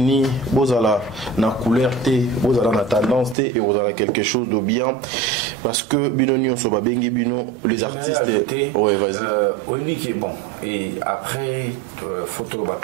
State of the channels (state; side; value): drops out; left; at 3.4 s